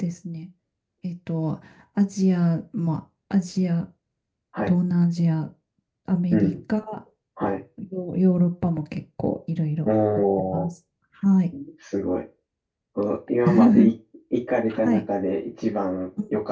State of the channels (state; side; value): identical; both; correlation 1.00